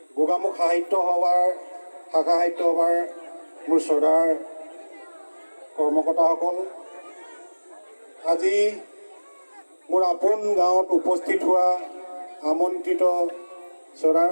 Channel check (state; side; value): inverted; both; correlation -1.00